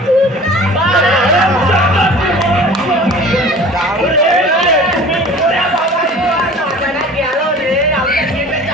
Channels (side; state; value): both; normal; correlation 0.43